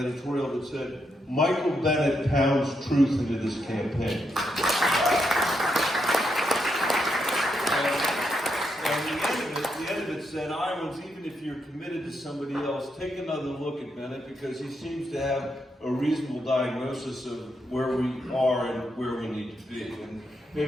that said, "Michael Bennet pounds truth into this campaign." And the end of it said, "Iowans, even if you're committed to somebody else, take another look at Bennet because he seems to have a reasonable diagnosis of where we are and where we need to be." And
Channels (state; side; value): normal; both; correlation 0.81